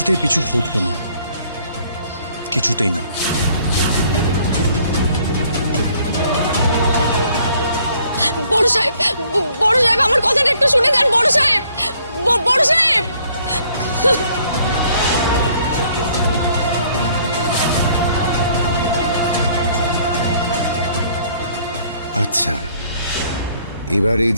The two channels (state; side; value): inverted; both; correlation -0.62